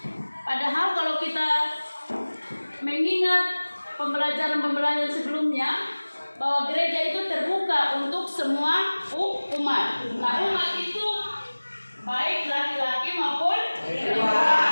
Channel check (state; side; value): inverted; both; correlation -1.00